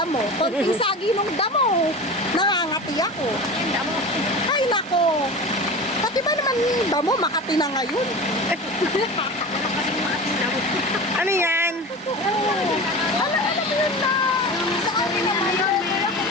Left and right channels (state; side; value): normal; both; correlation 0.31